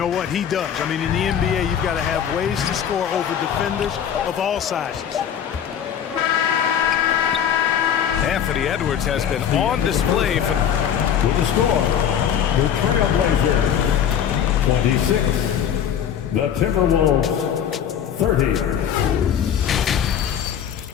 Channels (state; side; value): quieter; right; 8.9 dB